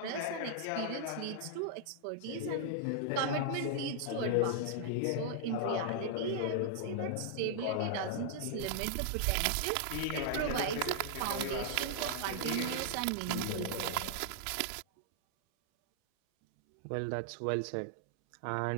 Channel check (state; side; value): different; both; correlation -0.01